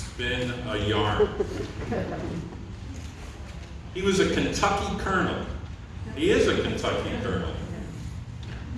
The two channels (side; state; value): both; identical; correlation 1.00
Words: a yarn. He was a Kentucky colonel. He is a Kentucky colonel.